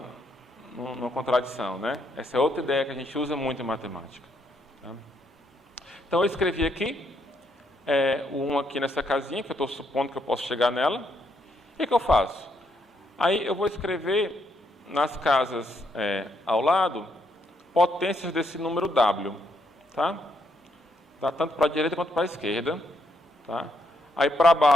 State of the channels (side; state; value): both; normal; correlation 0.75